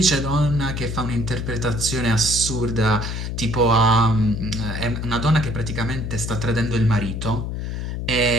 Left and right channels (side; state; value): left; noise; hum, 4 dB below the sound